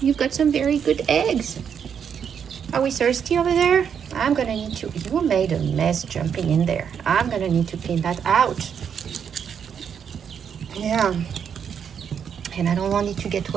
you've got some very good eggs. Are we thirsty over there? I'm gonna need to, you made a mess jumping in there. I'm gonna need to clean that out. Yeah. And I don't want it to get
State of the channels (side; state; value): left; quieter; 7.7 dB